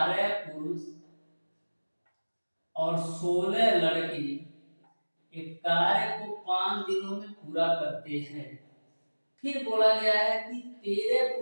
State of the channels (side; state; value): both; inverted; correlation -1.00